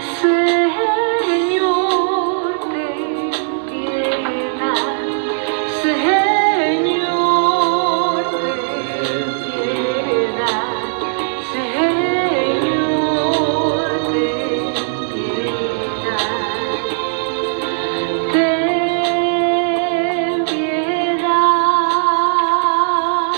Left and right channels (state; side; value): silent; left; digital silence